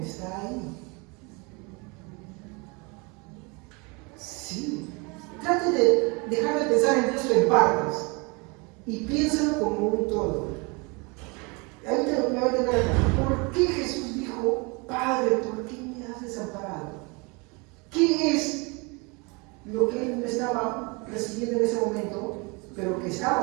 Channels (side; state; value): left; quieter; 29.2 dB